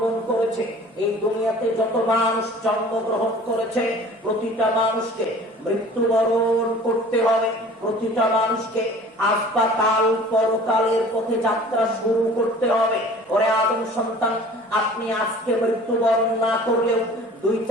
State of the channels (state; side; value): normal; both; correlation 0.46